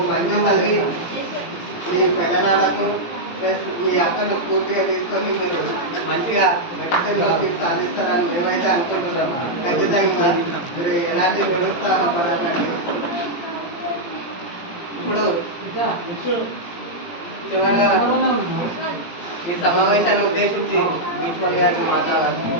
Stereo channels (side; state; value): right; late; 17 ms